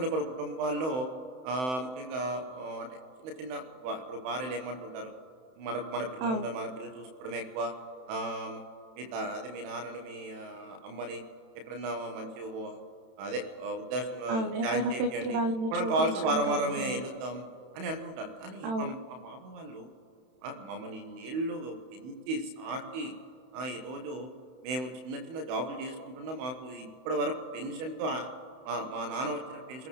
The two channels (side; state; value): left; late; 31 ms